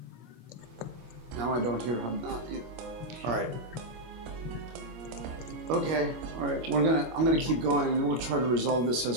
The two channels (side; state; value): left; late; 25 ms